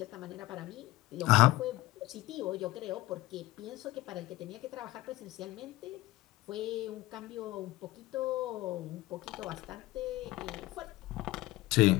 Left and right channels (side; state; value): right; quieter; 18.0 dB